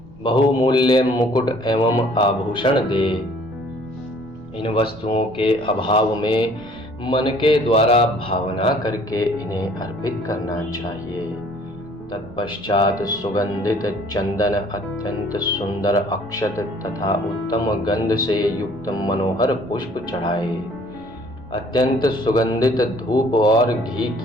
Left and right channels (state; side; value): noise; right; rumble, 21 dB below the sound